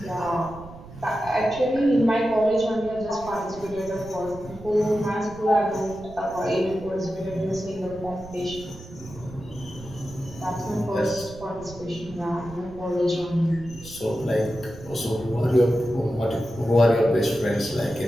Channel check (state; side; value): noise; right; rumble, 16 dB below the sound